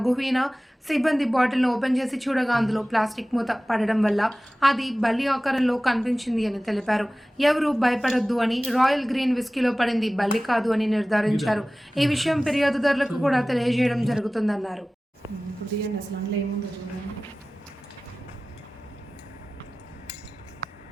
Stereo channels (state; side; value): normal; both; correlation 0.97